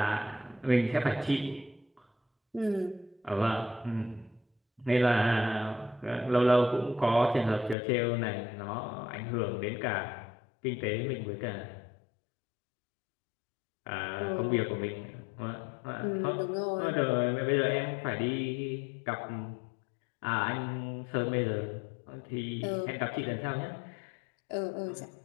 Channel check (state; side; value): drops out; right; at 7.8 s